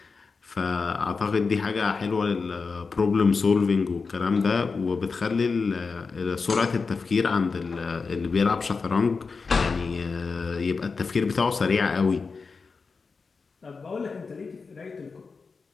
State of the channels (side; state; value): right; quieter; 4.7 dB